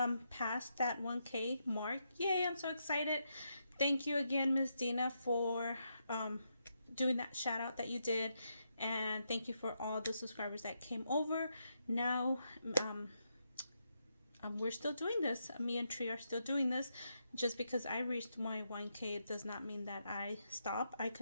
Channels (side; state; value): both; inverted; correlation -0.82